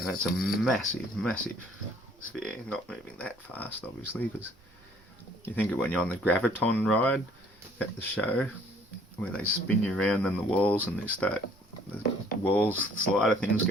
a massive, massive sphere, not moving that fast, obviously, because you think of when you're on the graviton ride at the show, where they spin you around in the walls and the walls, slider things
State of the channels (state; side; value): noise; right; rumble, 29 dB below the sound